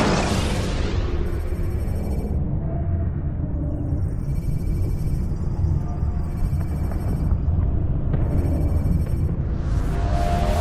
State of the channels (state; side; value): identical; both; correlation 1.00